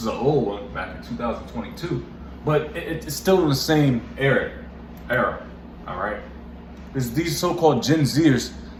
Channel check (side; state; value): both; identical; correlation 1.00